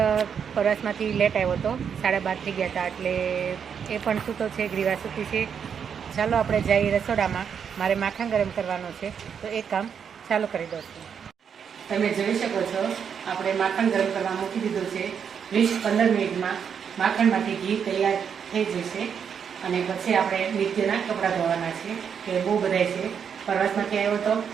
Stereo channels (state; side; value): quieter; left; 7.3 dB